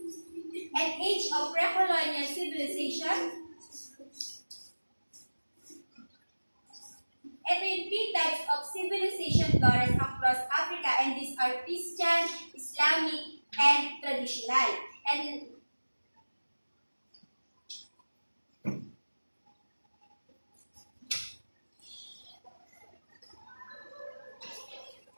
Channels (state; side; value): inverted; both; correlation -1.00